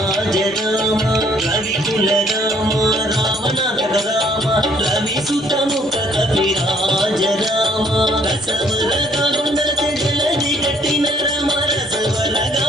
రామ రవికుల రామ రామనాంతక రామ రవి సుతముఖ కపిరాజ రామ రసవరగా కొండలతే జలది కట్టిన రామ రసవరగా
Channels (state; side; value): normal; both; correlation 0.63